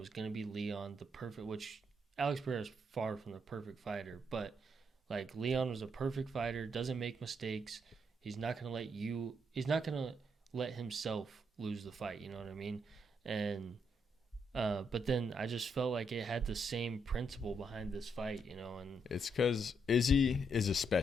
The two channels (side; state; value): both; normal; correlation 0.77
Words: going to be Leon, which Alex Pereira is far from the perfect fighter. But, like, Leon was a perfect fighter, doesn't make mistakes. He's not going to let himself lose the fight, you know what I mean? And, but then I just felt like it had the same principle behind this fight, you know, and It's because Izzy is a